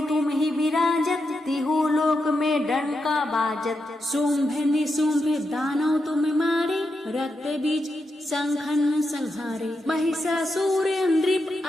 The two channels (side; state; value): both; normal; correlation 0.85